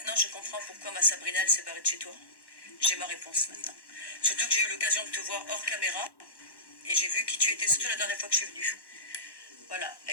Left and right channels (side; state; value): right; late; 1.1 ms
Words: je comprends pourquoi ma Sabrina, elle s'est barrée de chez toi. J'ai ma réponse maintenant. Surtout que j'ai eu l'occasion de te voir hors caméra. Et j'ai vu qui tu étais, surtout la dernière fois que je suis venue. Voilà,